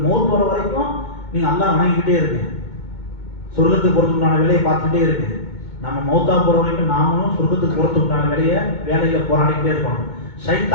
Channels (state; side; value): late; right; 2.2 ms